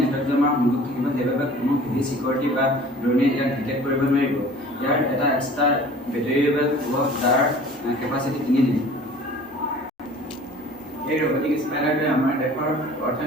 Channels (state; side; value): normal; both; correlation 0.46